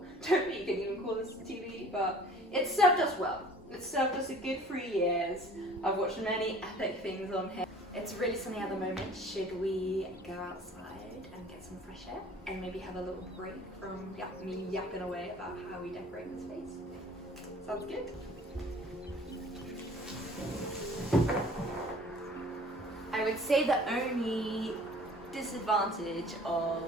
Don't think you can even call this a TV, but it served us well. It served us a good 3 years. I've watched many epic things on here. It's really sunny at the moment. Should we go outside and get some fresh air and maybe have a little break from me yapping away about how we decorate the space? Sounds good. I would say the only disadvantage of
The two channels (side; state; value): both; normal; correlation 0.49